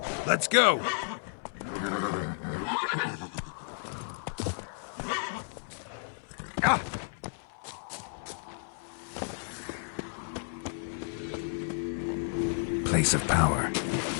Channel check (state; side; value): silent; right; digital silence